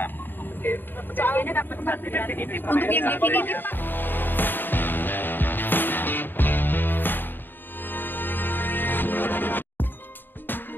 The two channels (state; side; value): late; right; 0.094 ms